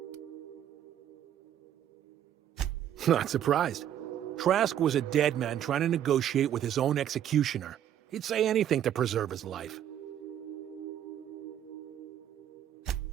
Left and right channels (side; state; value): left; quieter; 10.5 dB